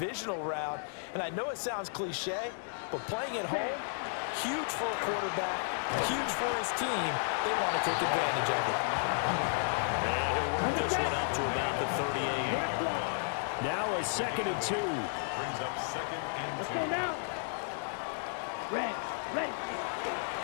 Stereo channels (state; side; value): silent; right; digital silence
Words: round. And I know it sounds cliche, but playing at home, huge for a quarterback, huge for his team. They want to take advantage of it. And he'll work this one up to about the 38. Now a 2nd and 2. Brings up 2nd and 2. Let's go now. Red.